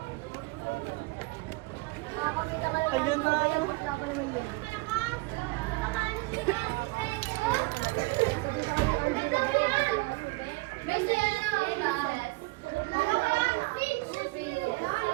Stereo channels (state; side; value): quieter; left; 24.5 dB